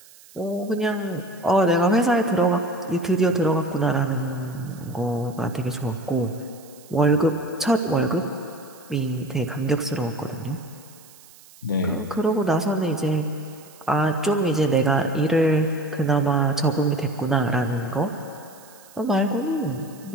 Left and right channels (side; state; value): right; noise; hiss, 23 dB below the sound